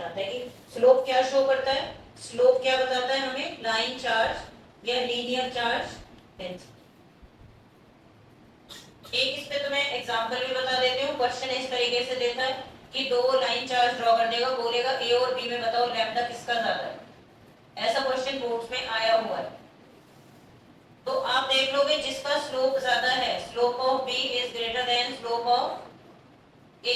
है कि स्लोप क्या शो करता है, स्लोप क्या बताता है हमें, लाइन चार्ज या लीनियर चार्ज डेंसिटी। एक इस पे तो मैं एग्जांपल भी बता देती हूँ। क्वेश्चन इस तरीके से देता है कि दो लाइन चार्ज ड्रॉ कर देगा, बोलेगा ए और बी में बताओ लैम्डा किसका ज्यादा है। ऐसा क्वेश्चन बोर्ड्स में आया हुआ है। तो आप देख लोगे जिसका स्लोप ज्यादा है, slope of B is greater than slope of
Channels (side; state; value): both; identical; correlation 1.00